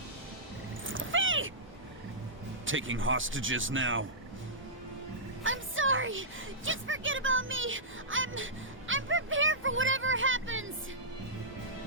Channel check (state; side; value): normal; both; correlation -0.15